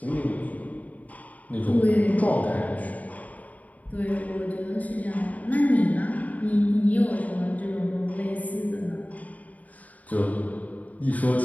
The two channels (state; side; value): late; right; 0.073 ms